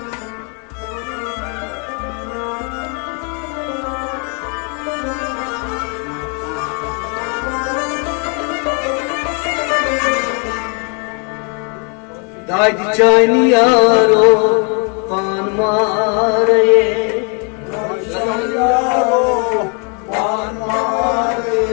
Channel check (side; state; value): right; quieter; 36.0 dB